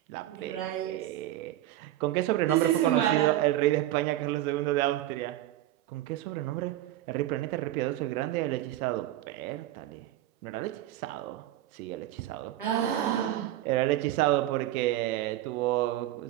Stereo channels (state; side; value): quieter; left; 14.1 dB